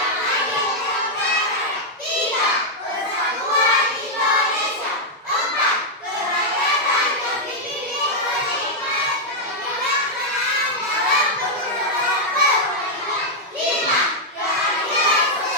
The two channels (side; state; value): both; normal; correlation -0.03